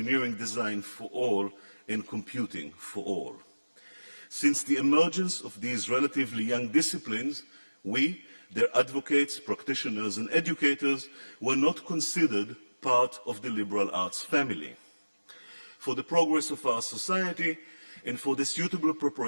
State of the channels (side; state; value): both; inverted; correlation -1.00